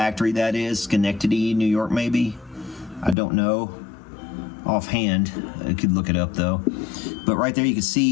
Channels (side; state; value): right; drops out; at 3.2 s